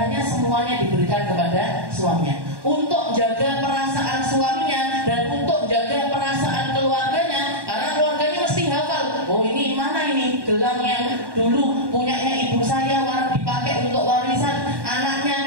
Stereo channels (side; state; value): left; late; 1.1 ms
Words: semuanya diberikan kepada suaminya untuk jaga perasaan suaminya dan untuk jaga perasaan keluarganya, karena keluarganya mesti hafal. Oh ini mana ini gelang yang dulu punyanya ibu saya dipakai untuk warisan